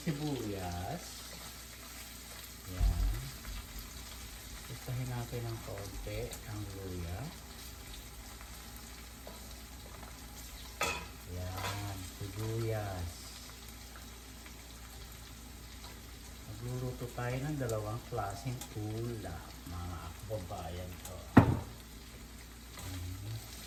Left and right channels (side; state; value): both; identical; correlation 1.00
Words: Yan. Isahin natin ng konti ang luya. Yan, sibuyas. Magluluto tayo ng dalawang klaseng ulam, mga kababayan ko.